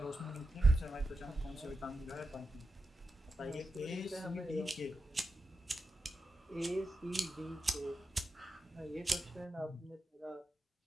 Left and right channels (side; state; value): both; normal; correlation 0.90